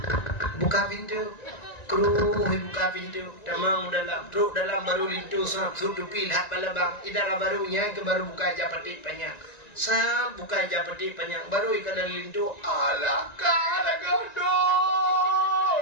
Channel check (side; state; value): right; late; 1.9 ms